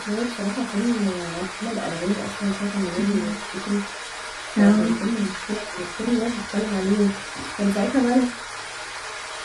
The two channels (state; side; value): identical; both; correlation 1.00